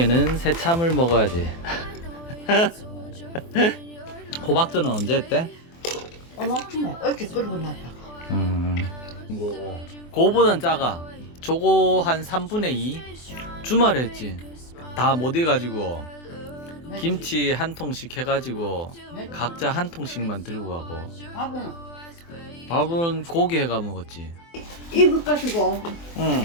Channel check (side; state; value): right; late; 24 ms